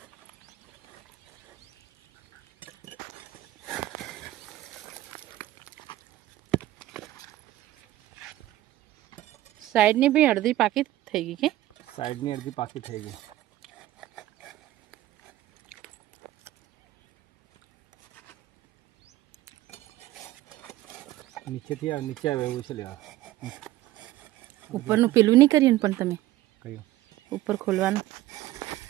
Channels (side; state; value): left; quieter; 15.3 dB